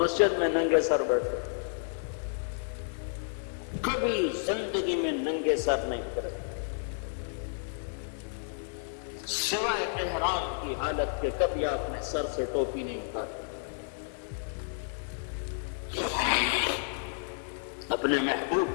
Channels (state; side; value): silent; right; digital silence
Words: میں ننگے سر بیٹھے، کبھی زندگی میں ننگے سر نہیں پھرے، سوائے احرام کی حالت کے کبھی آپ نے سر سے ٹوپی نہیں اٹھائی۔ اپنے